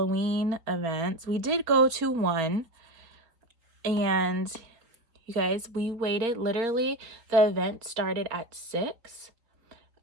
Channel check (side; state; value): left; late; 4.2 ms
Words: events, we did go to one, and you guys, we waited. Literally, the event started at 6.